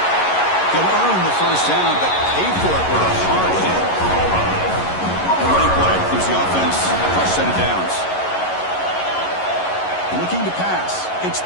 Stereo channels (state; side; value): late; right; 11 ms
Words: He'll earn the first down, but pay for it with a hard hit. A running play gives the offense a fresh set of downs. Looking to pass. It's